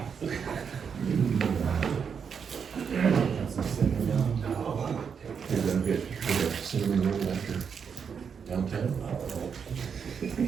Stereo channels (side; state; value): left; quieter; 6.7 dB